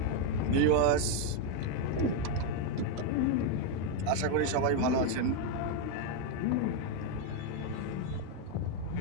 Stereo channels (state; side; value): different; both; correlation 0.02